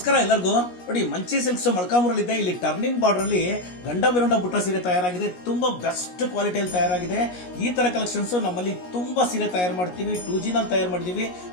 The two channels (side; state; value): right; late; 17 ms